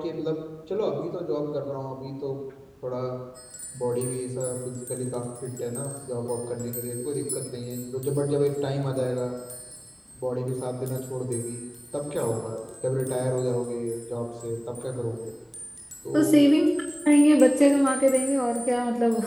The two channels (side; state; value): both; identical; correlation 1.00